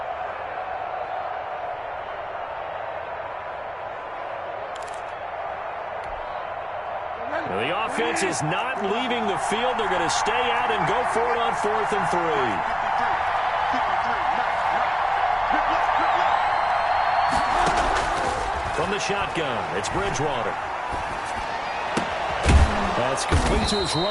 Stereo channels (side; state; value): both; identical; correlation 1.00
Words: The offense is not leaving the field. They're going to stay out and go for it on 4th and 3. From the shotgun, it's Bridgewater. That's complete to his